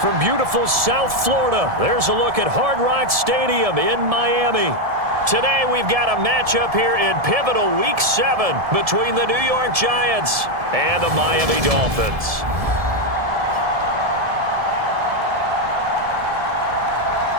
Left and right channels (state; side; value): late; left; 1.7 ms